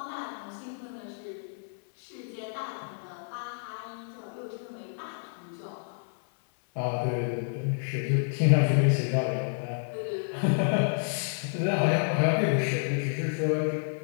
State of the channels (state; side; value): silent; right; 58 dB below the other